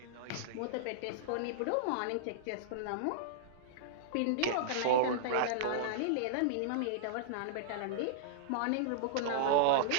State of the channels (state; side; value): different; both; correlation -0.02